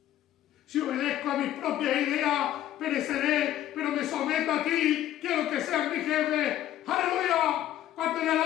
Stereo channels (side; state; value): right; quieter; 12.5 dB